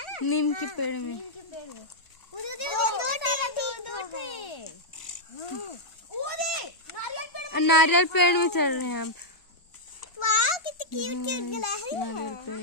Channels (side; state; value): right; late; 1.4 ms